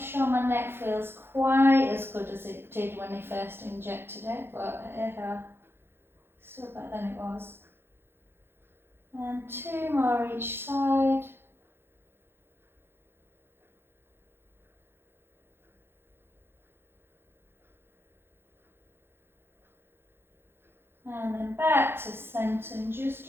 my neck feels quite as good as it did when I first injected it, but still better than it was. And 2 more each side. And then back to centre and just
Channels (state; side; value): late; left; 0.11 ms